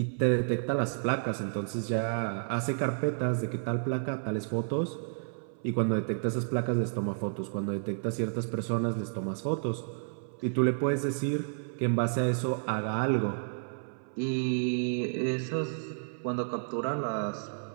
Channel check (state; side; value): silent; left; 57 dB below the other